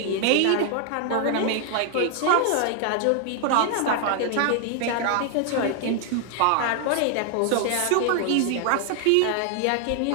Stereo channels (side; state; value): both; different; correlation 0.00